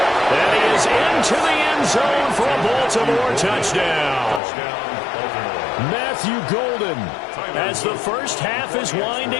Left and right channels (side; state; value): right; drops out; at 4.4 s